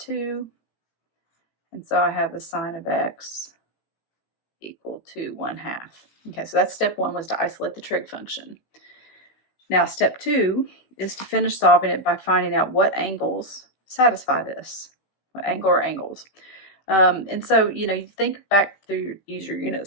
And so I have the sine of x equal to 1/2. Okay, so that's step 1, was to isolate the trig function. Now step 2 is to finish solving it by finding out what angles satisfy this, what angle or angles. And so, you think back through, use your unit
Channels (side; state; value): right; late; 16 ms